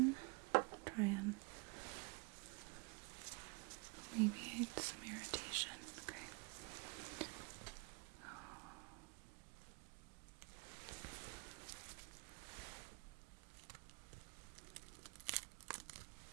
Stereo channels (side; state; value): left; quieter; 29.5 dB